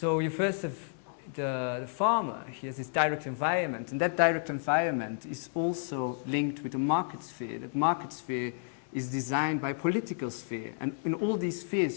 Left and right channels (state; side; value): silent; right; digital silence